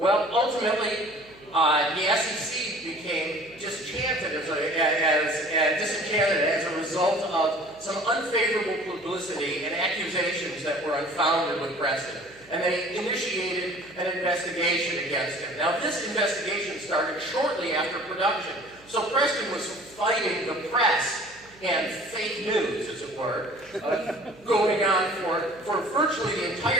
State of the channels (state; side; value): noise; right; hum, 26 dB below the sound